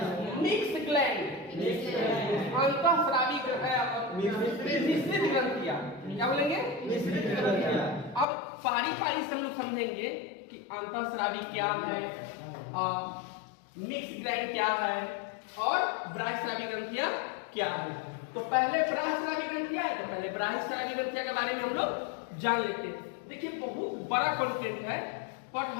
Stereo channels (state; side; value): drops out; right; at 8.2 s